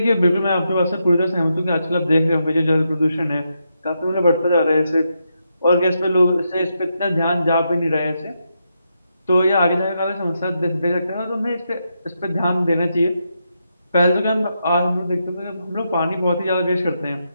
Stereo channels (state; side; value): inverted; both; correlation -0.83